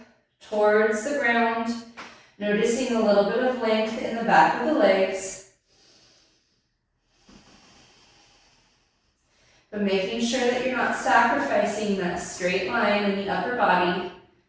towards the ground, noticing a little bit of length in the back of the legs, but making sure that you're not sacrificing that straight line in the upper body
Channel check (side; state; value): both; identical; correlation 1.00